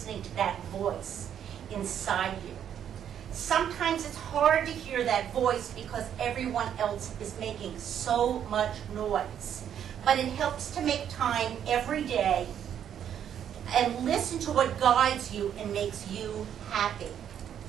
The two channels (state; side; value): quieter; left; 9.4 dB